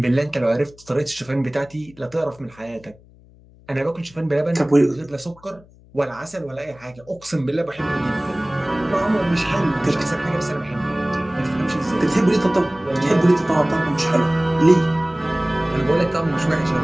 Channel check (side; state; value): left; noise; hum, 26 dB below the sound